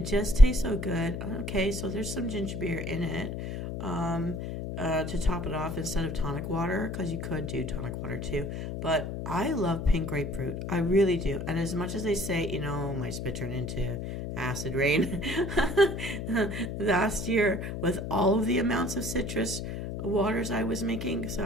just tastes so good. Okay, so there's some ginger beer in it to top it off instead of tonic water, because you could do tonic water too. But I love pink grapefruit. I really do. And as much as they say, you know, my spit turned into acid rain last year with all of the amounts of citrus waters I was making, so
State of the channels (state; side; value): noise; left; hum, 5 dB below the sound